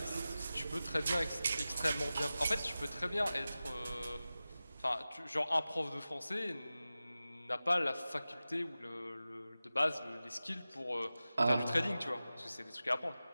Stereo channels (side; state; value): both; inverted; correlation -0.95